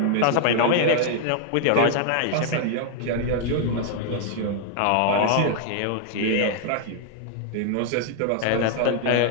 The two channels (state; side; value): different; both; correlation -0.01